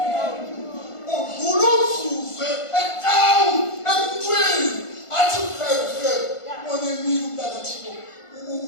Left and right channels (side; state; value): right; late; 1.5 ms